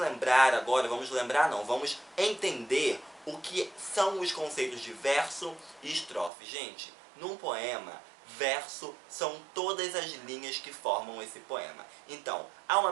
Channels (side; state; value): left; drops out; at 6.3 s